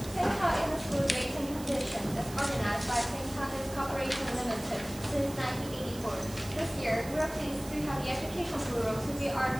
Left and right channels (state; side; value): noise; right; hiss, 15 dB below the sound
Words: St. Paul School Rating Competition is organized by St. Paul's Corporation Limited since 1984. This year, we are pleased to have the Education Bureau to be our